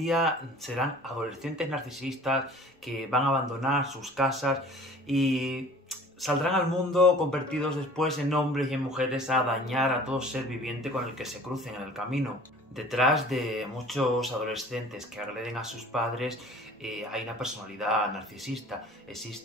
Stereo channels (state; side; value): normal; both; correlation 0.47